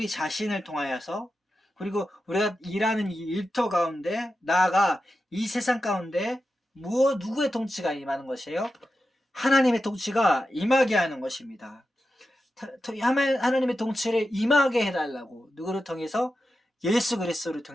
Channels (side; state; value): both; normal; correlation 0.90